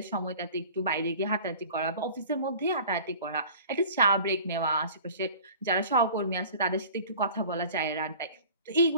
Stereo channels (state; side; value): inverted; both; correlation -0.44